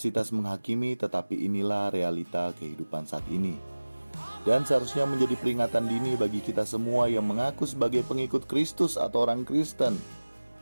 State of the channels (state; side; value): inverted; both; correlation -1.00